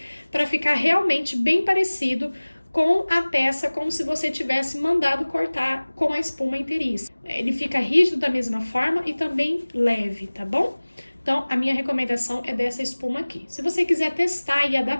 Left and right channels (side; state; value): both; inverted; correlation -1.00